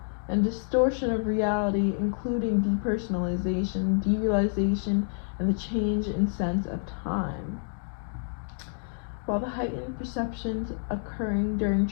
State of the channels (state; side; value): silent; right; digital silence